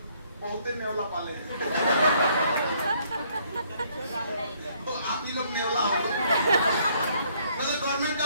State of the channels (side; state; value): both; inverted; correlation -0.66